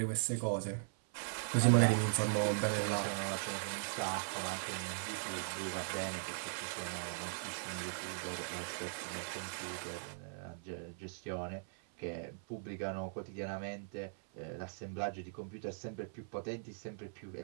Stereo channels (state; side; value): silent; left; 51 dB below the other